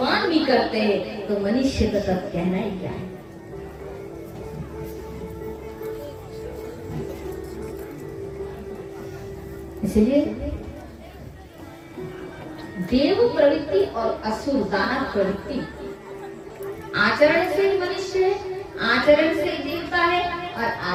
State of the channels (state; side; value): identical; both; correlation 1.00